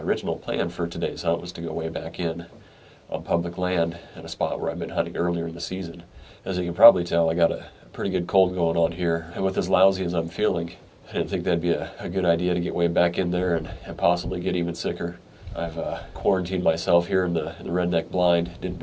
plan for today's hunt was to go way back in on public land in a spot where I've been hunting earlier in the season. As you can probably tell, I got a pretty good cold going on here, and with as lousy as I'm feeling, I didn't think that'd be a good idea to get way back in there and possibly get even sicker. I've quarantined myself here in the redneck blind. Didn't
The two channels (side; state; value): both; identical; correlation 1.00